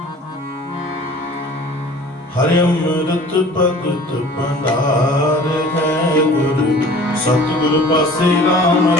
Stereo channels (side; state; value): both; normal; correlation 0.46